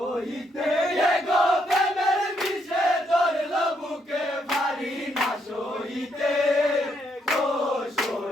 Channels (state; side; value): normal; both; correlation 0.75